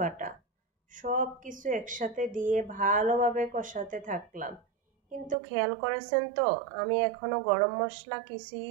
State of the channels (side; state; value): left; drops out; at 5.4 s